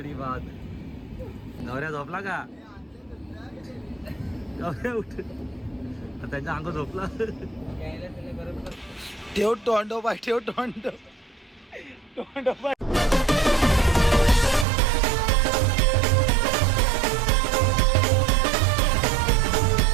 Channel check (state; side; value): drops out; left; at 14.7 s